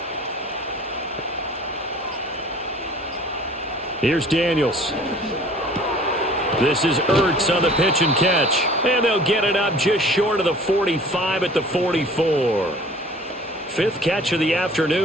Here's Daniels. This is Ertz on the pitch and catch. And they'll get it up just short of the 45 at the 44. 5th catch of the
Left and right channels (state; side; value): normal; both; correlation 0.49